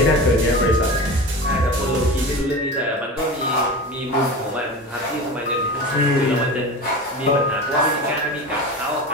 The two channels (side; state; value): both; normal; correlation 0.29